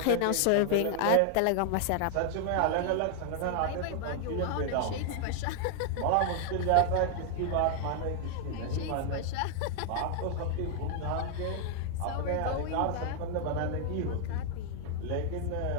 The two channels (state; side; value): different; both; correlation 0.00